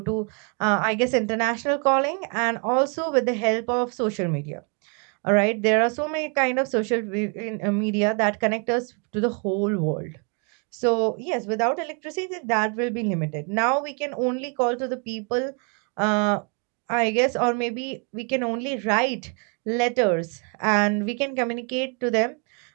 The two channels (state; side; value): quieter; left; 37.0 dB